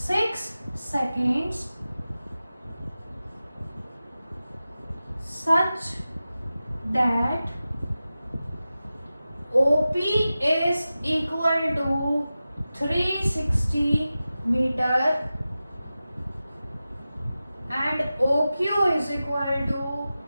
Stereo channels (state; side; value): inverted; both; correlation -0.94